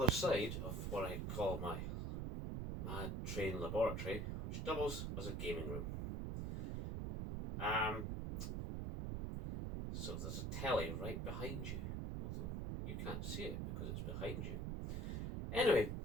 side of what I call my mad train laboratory, which doubles as a gaming room. So there's a telly right behind you, although you can't see it because it's behind you. Anyway,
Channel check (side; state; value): right; noise; rumble, 2 dB below the sound